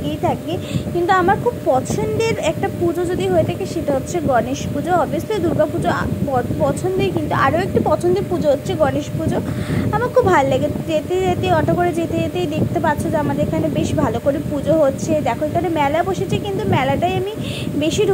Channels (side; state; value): both; identical; correlation 1.00